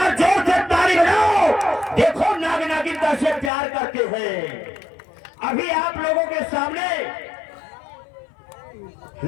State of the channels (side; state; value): right; drops out; at 3.5 s